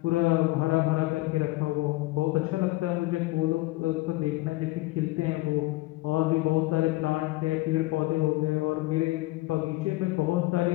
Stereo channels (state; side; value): quieter; right; 20.3 dB